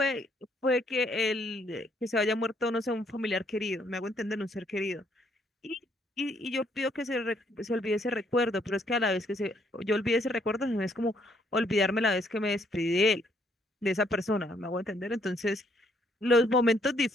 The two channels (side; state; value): both; normal; correlation 0.69